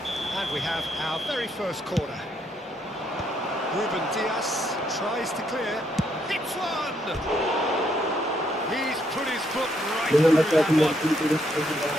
And we have our very first corner. Ruben Dias tries to clear. Hits one! He's put his foot right through that one.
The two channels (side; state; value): both; normal; correlation 0.73